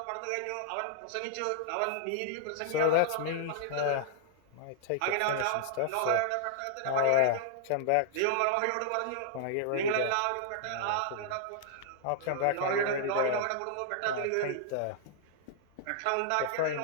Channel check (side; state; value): both; different; correlation -0.01